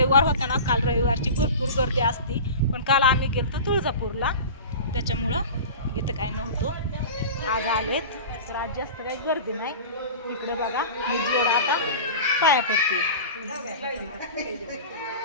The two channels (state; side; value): inverted; both; correlation -0.33